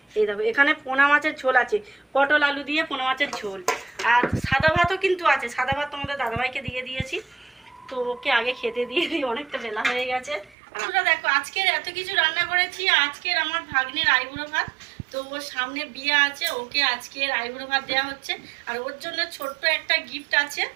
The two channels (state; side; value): drops out; left; at 10.6 s